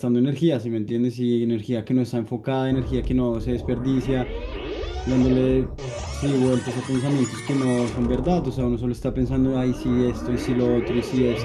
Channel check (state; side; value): identical; both; correlation 1.00